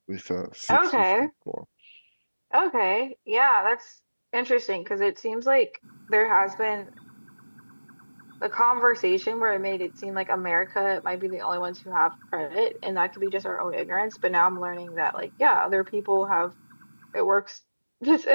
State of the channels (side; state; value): both; inverted; correlation -1.00